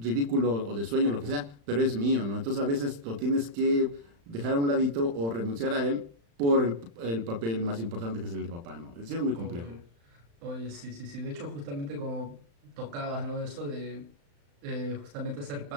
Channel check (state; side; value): late; left; 35 ms